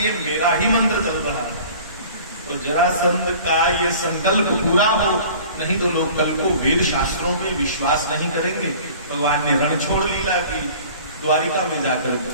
मेरा ही मंत्र चल रहा है। तो जरासंध का ये संकल्प पूरा हो, नहीं तो लोग कल को वेद शास्त्रों में विश्वास नहीं करेंगे। भगवान ने रण छोड़ लीला की, द्वारिका में जाकर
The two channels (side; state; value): both; inverted; correlation -0.46